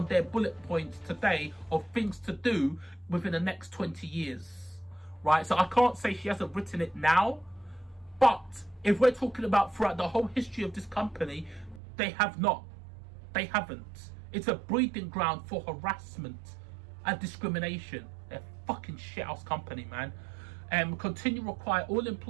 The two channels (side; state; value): left; drops out; at 11.8 s